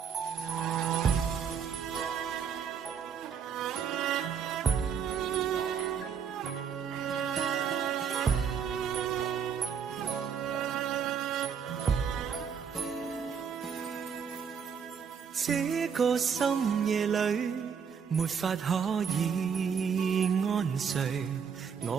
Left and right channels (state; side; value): quieter; left; 7.0 dB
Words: 這個深夜裏，沒法可以安睡。